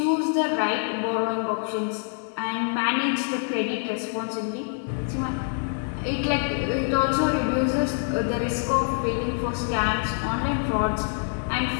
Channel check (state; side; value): silent; right; 58 dB below the other